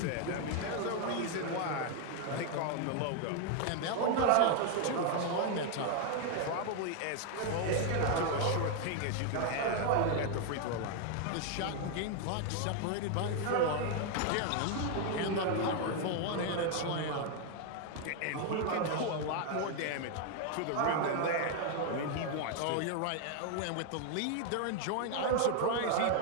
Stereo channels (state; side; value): different; both; correlation 0.00